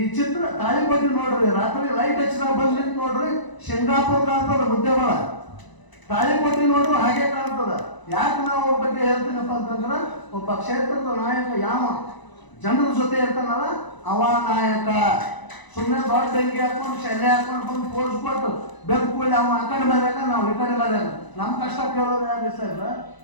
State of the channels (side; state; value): right; late; 1.0 ms